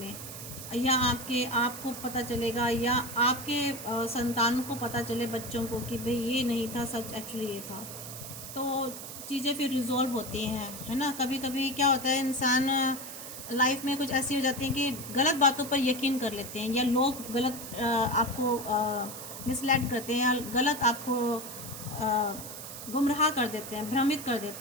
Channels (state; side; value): noise; right; hiss, 10 dB below the sound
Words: या आपको पता चलेगा, या आपके संतान को पता चले, बच्चों को, कि भाई ये नहीं था सच, एक्चुअली ये था। तो चीज़ें फिर रिजॉल्व होती हैं, है ना। कभी कभी क्या होता है, इंसान लाइफ में कुछ ऐसी हो जाती हैं कि गलत बातों पर यकीन कर लेते हैं, या लोग गलत आपको मिसलेड करते हैं, या गलत आपको गुमराह कर देते हैं, भ्रमित कर